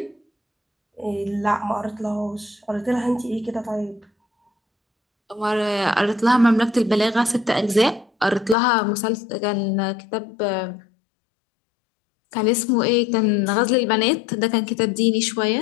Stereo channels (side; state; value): right; drops out; at 8.6 s